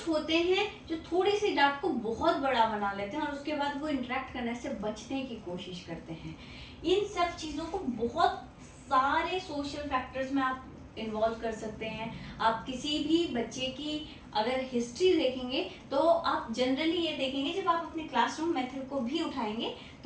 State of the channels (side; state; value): both; identical; correlation 1.00